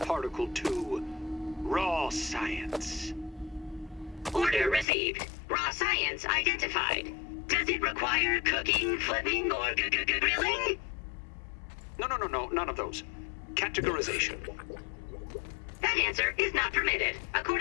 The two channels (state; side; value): drops out; right; at 4.9 s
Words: particle to Raw Science. Order received. Raw science identified. Does it require cooking, flipping, or grilling? No, none of those. Categorization. That answer is not permitted,